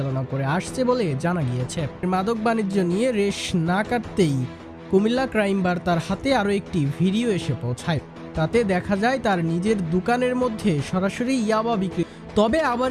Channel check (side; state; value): both; identical; correlation 1.00